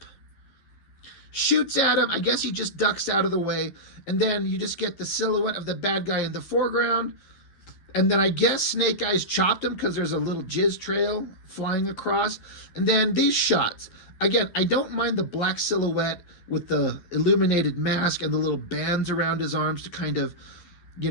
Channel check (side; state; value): right; late; 11 ms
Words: Shoots at him. I guess he just ducks out of the way. And then you just get the silhouette of the bad guy in the foreground. And then I guess Snake Eyes chopped him because there's a little jizz trail flying across. And then these shots. Again, I don't mind the black silhouette with the illuminated mask and the little bands around his arms to kind of,